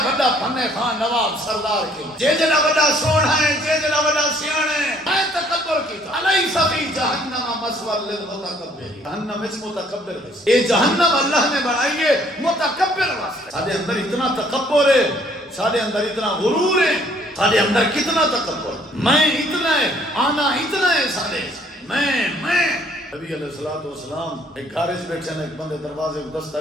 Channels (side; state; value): both; normal; correlation 0.62